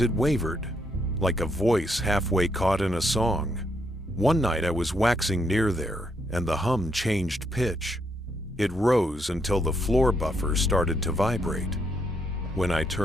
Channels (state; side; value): normal; both; correlation 0.75